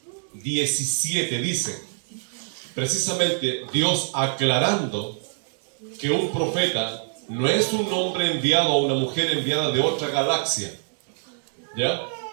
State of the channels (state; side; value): silent; left; digital silence